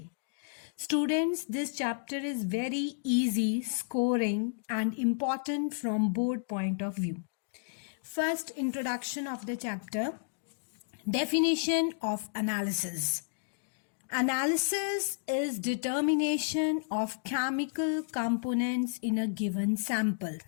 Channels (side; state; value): right; silent; digital silence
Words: Students, this chapter is very easy, scoring and important from board point of view. First, introduction of the chapter. Definition of analysis. Analysis is determination of chemical components in a given sample,